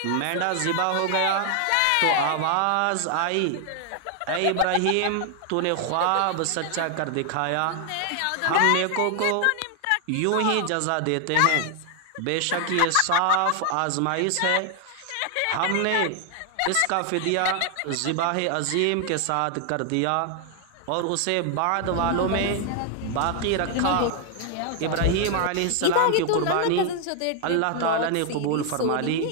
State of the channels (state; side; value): different; both; correlation 0.00